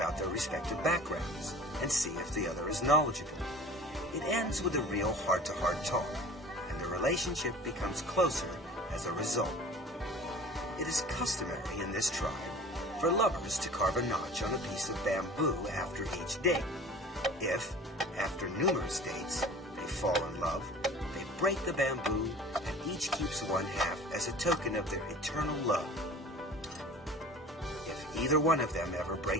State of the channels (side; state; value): both; normal; correlation 0.42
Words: their respective backgrounds and see if the other is knowledgeable. It ends with a real heart-to-heart talk, and the relationship becomes closer as a result. It is customary in this tribe for lovers to carve a notch on a piece of bamboo after each date. If, after numerous dates, they fall in love, they break the bamboo and each keeps one half as a token of their eternal love. If either one of them ever